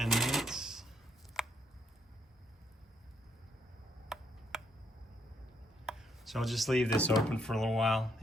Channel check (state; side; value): normal; both; correlation 0.73